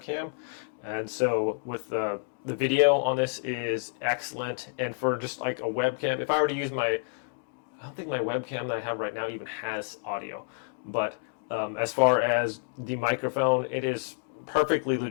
and so with the video on this is excellent. And for just like a webcam, if I were to use I don't think my webcam that I have right now even has audio, but as far as the microphone, it is perfectly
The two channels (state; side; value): silent; right; 58 dB below the other